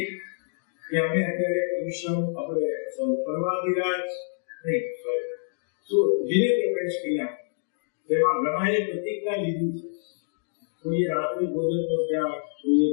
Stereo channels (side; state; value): right; silent; digital silence